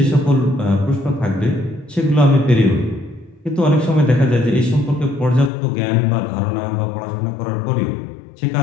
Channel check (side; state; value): right; drops out; at 5.5 s